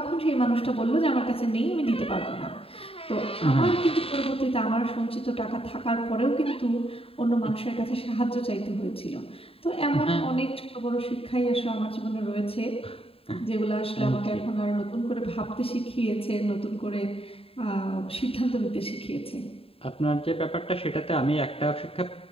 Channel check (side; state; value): right; late; 0.27 ms